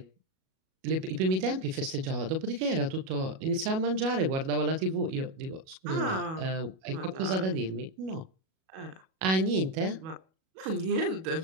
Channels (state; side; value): late; left; 37 ms